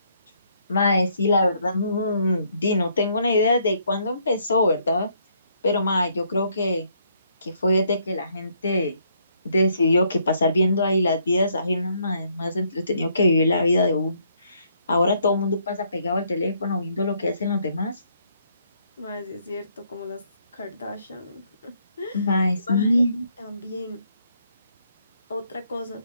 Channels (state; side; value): inverted; both; correlation -0.70